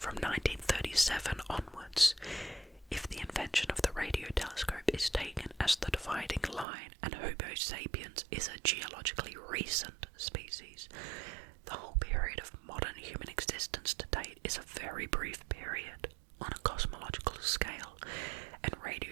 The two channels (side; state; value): left; drops out; at 6.7 s